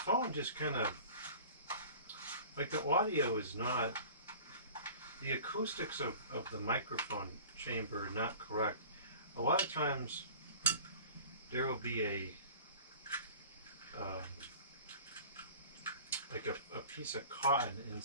just kind of, like the audio is not, the acoustics of the microphone chamber are not correct. A lot of times there will be like a piece of cotton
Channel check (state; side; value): inverted; both; correlation -0.42